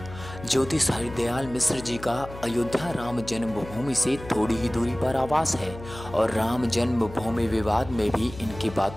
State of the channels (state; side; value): noise; left; hum, 14 dB below the sound